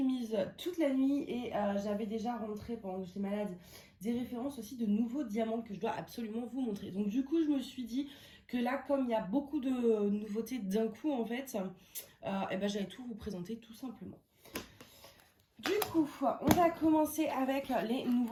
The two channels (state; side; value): identical; both; correlation 1.00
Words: mise toute la nuit et j'avais déjà rentré pendant que j'étais malade des références aussi de nouveaux diamants que je dois absolument vous montrer. Donc du coup je me suis dit que là comme il y a beaucoup de nouveautés d'un coup en fait, et ben j'allais tout vous présenter tout simplement. Du coup, on va commencer avec les